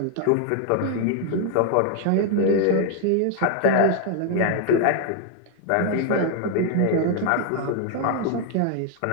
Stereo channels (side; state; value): both; different; correlation 0.00